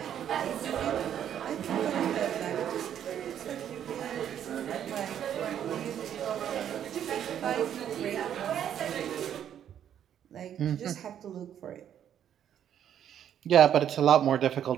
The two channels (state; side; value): quieter; left; 9.8 dB